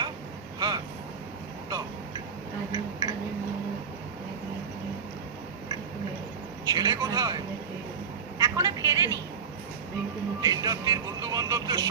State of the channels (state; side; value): quieter; left; 6.2 dB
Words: হ্যাঁ দাও। ছেলে কোথায়? এখনো ফেরেনি। দিন রাত্রির বন্ধু বান্ধবদের